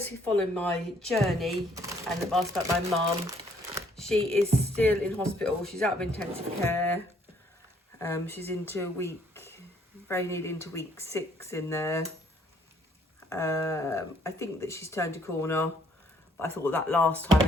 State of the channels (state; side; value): normal; both; correlation 0.65